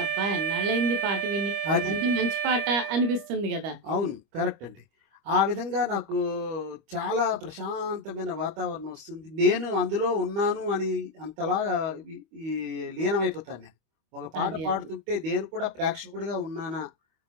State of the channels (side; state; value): left; late; 25 ms